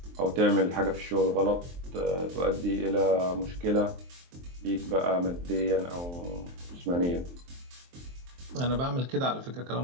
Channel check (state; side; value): late; left; 23 ms